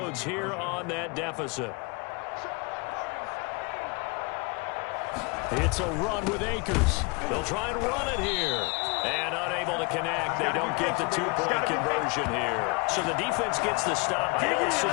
here on that deficit. It's a run with Akers. They'll try and run it here. And unable to connect. They don't get the 2-point conversion here. So the defense gets the stop. I know it's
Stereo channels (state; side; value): quieter; right; 29.4 dB